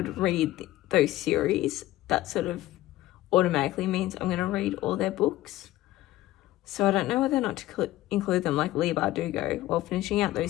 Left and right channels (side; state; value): right; quieter; 15.8 dB